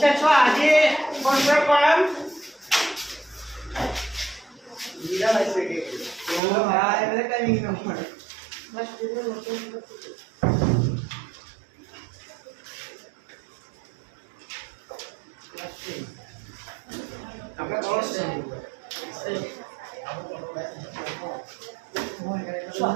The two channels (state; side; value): drops out; left; at 6.4 s